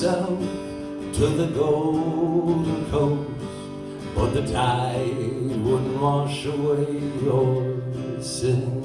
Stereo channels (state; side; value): identical; both; correlation 1.00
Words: to the Golden Coast, but the tide wouldn't wash away your sin.